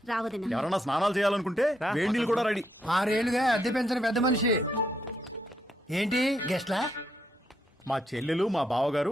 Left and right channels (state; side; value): normal; both; correlation 0.77